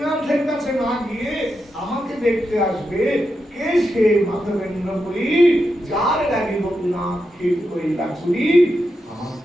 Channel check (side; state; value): both; normal; correlation 0.86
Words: কাছে না গিয়ে আমাকে দেখতে আসবে। কে সে মাধবেন্দ্র পুরী, যার লাগি গোপীনাথ ক্ষীর কইলা চুরি? আমার